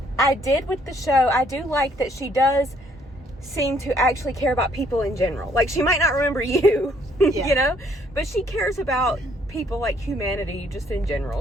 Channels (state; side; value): normal; both; correlation 0.65